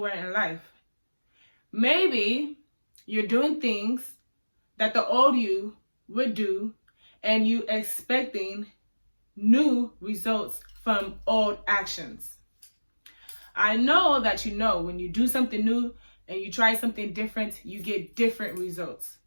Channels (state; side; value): inverted; both; correlation -1.00